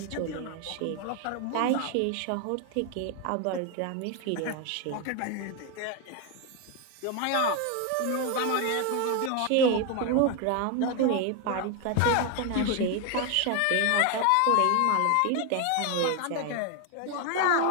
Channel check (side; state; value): both; different; correlation 0.01